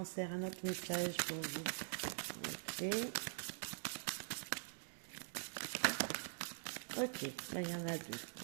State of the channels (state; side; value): silent; left; digital silence